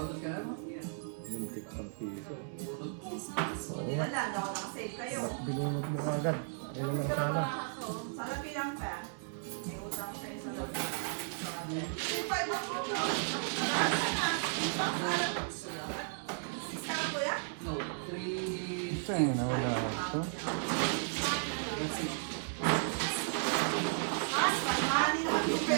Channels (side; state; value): left; silent; digital silence